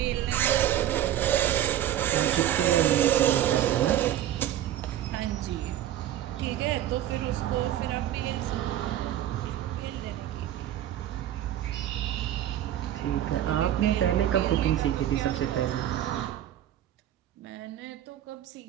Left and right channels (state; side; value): quieter; left; 11.9 dB